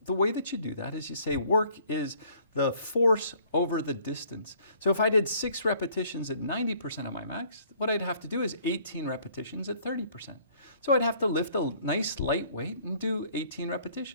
way that you do that is you say work is the force over the distance. So if I did 6 repetitions at 90% of my max, what I'd have to do is 18 repetitions at 30%. So I'd have to lift a nice light weight and do 18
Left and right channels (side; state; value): both; inverted; correlation -0.59